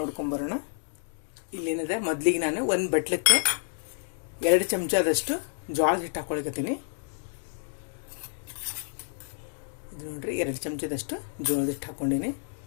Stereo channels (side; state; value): right; silent; digital silence